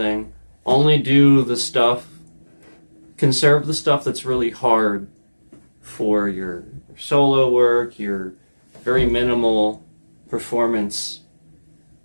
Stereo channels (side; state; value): both; inverted; correlation -1.00